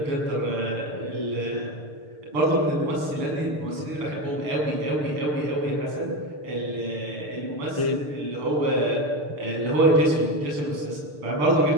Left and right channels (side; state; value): left; late; 6.7 ms